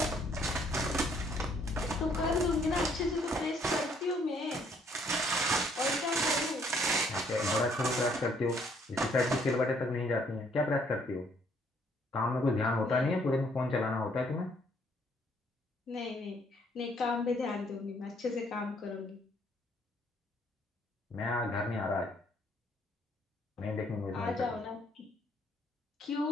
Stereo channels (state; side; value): normal; both; correlation 0.66